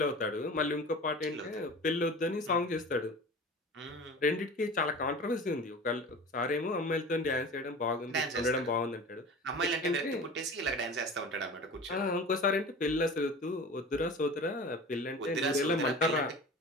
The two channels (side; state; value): both; normal; correlation 0.37